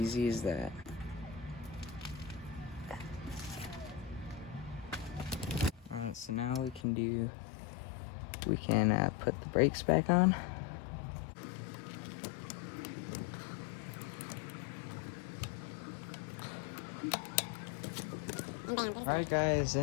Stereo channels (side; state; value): right; drops out; at 6.9 s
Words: as that. Alright, so now we can put the brakes back on. Alright guys,